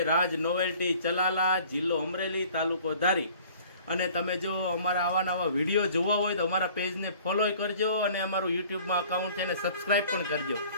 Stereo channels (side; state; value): both; inverted; correlation -0.51